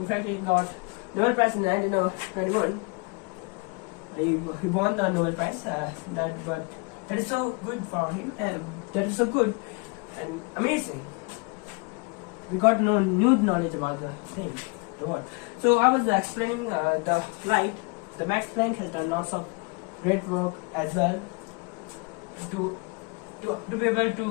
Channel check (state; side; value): quieter; right; 30.2 dB